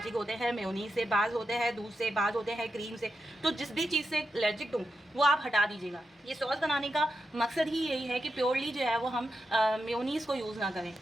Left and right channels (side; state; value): both; normal; correlation 0.87